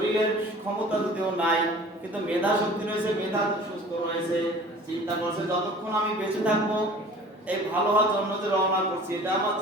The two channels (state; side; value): normal; both; correlation 0.45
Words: ক্ষমতা যদিও নাই কিন্তু মেধা শক্তি রয়েছে, মেধা সুস্থ রয়েছে। চিন্তা করছে যতক্ষণ আমি বেঁচে থাকবো এই ভালো হওয়ার জন্য যে রওনা করছি এটা আমার